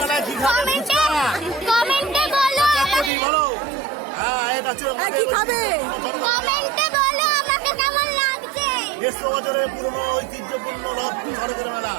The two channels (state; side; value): drops out; left; at 3.1 s